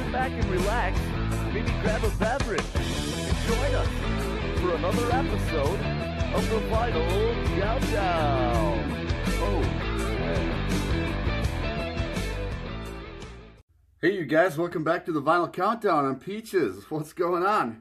back and relax, maybe grab a beverage, and join us for another episode of the Vinyl Countdown. Oh, yeah. Hey you guys, welcome back to the Vinyl Countdown. I'm Peaches. What's going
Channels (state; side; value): identical; both; correlation 1.00